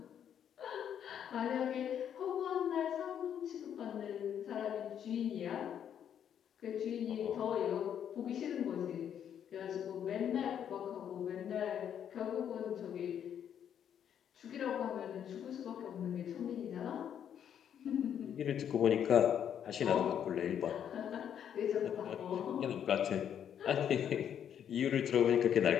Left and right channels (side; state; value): right; quieter; 9.1 dB